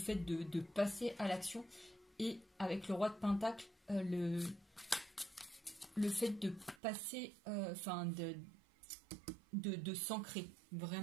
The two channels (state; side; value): drops out; left; at 6.8 s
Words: de passer à l'action. Et avec le Roi de Pentacle, le fait de passer, de s'ancrer.